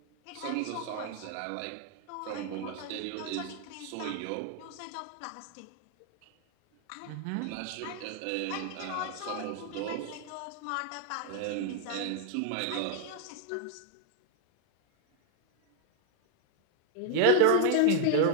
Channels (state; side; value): different; both; correlation 0.00